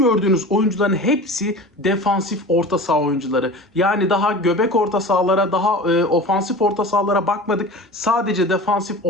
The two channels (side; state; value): both; normal; correlation 0.35